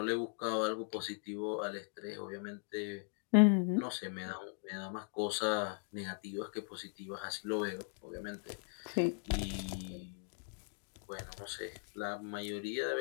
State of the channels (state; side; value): silent; right; 52 dB below the other